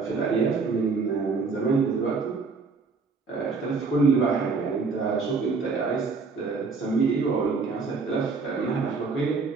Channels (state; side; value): quieter; left; 4.5 dB